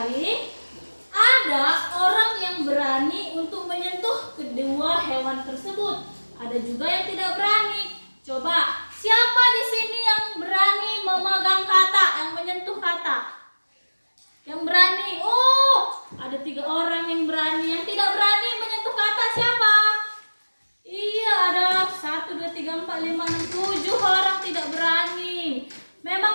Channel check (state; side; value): inverted; both; correlation -1.00